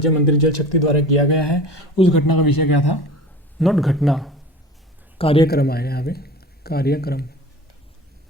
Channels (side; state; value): both; normal; correlation 0.38